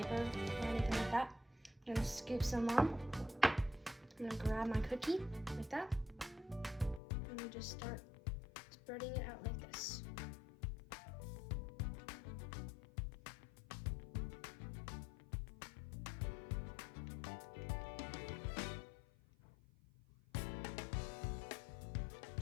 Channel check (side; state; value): right; drops out; at 7.0 s